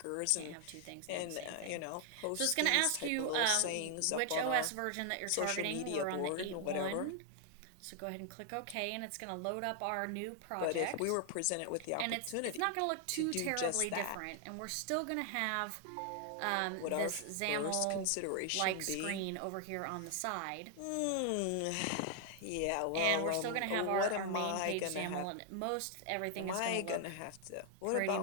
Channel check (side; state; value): both; different; correlation 0.00